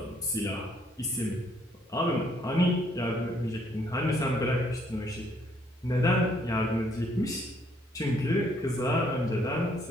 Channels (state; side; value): normal; both; correlation 0.67